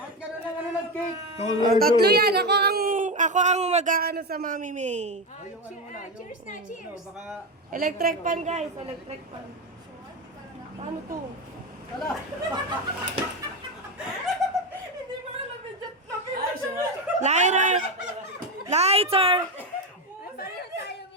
ganun lang ano nag-cake? Tatlo yan. Ako ang mag-aano sa Mami May. Cheers na, cheers. Baka... Electric pan, guys. Electric pan. Paano to? Lighter! Lighter! Pareho tayo minsan.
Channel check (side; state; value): both; normal; correlation 0.14